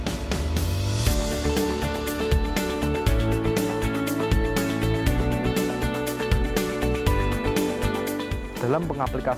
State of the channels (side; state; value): both; identical; correlation 1.00